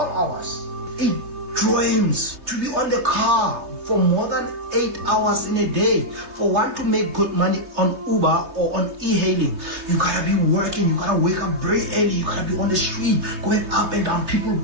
hours. It drains to be on the car for more than 8 hours in a day. For one to make good money on Uber or on e-hailing, you gotta be working, you gotta wake up very early, you gotta be on the street, going up and down, people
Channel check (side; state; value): left; late; 3.2 ms